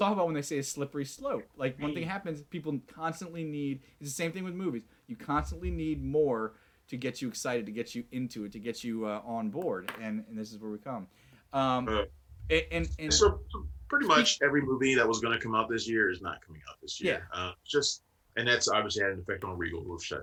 about when they say a slippery slope. Like one thing happens, people constantly need. It's the same thing with movies. You constantly need more to get you excited, to get you into it, to get you on board, and this is where we come. So pretty much every movie that was going to come out this year is not coming out this year. Yeah. And that's obviously had an effect on Regal, who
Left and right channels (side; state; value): both; identical; correlation 1.00